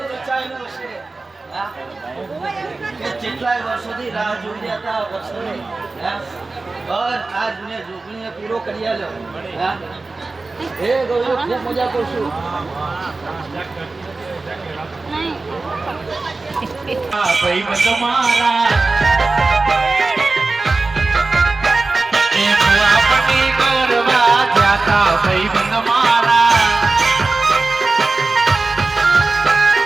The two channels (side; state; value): left; quieter; 3.5 dB